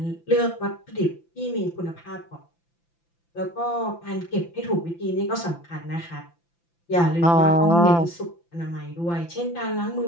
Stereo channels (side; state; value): right; late; 5.9 ms